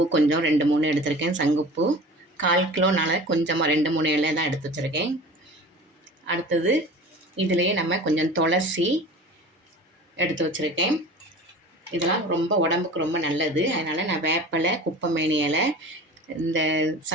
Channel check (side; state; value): both; normal; correlation 0.39